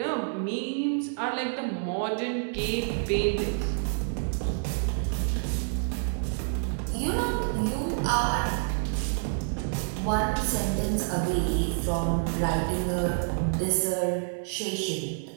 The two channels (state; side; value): silent; left; digital silence